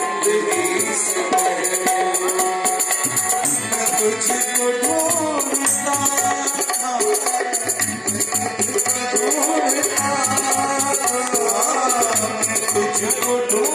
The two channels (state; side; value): identical; both; correlation 1.00